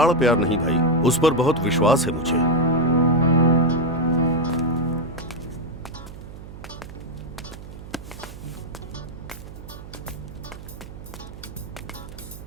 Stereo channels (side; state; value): right; noise; hum, 14 dB below the sound